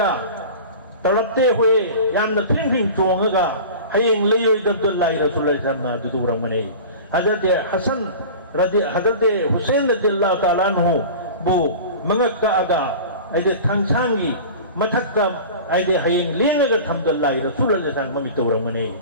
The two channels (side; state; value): both; inverted; correlation -0.36